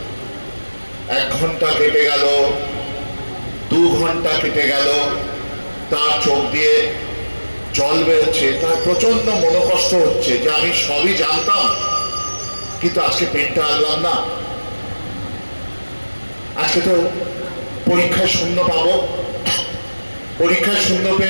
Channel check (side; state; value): both; inverted; correlation -1.00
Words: 1 ঘন্টা কেটে গেল, 2 ঘন্টা কেটে গেল, তার চোখ দিয়ে জল বেরোচ্ছে, তার প্রচন্ড মনোকষ্ট হচ্ছে যে আমি সবই জানতাম কিন্তু আজকে পেনটা আনলাম না, আজকে তো পরীক্ষায় 0 পাবো, পরীক্ষায় 0